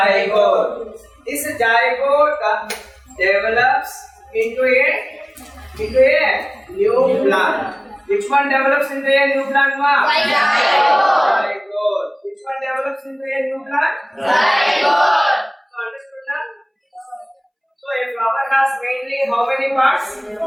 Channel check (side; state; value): both; identical; correlation 1.00